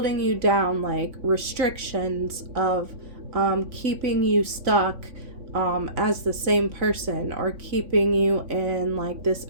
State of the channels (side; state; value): left; late; 3.6 ms